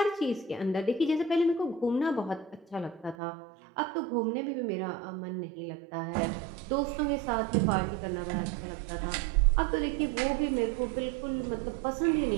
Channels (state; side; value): drops out; left; at 3.2 s